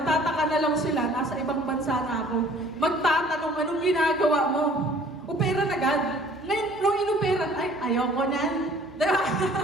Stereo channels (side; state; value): both; normal; correlation 0.53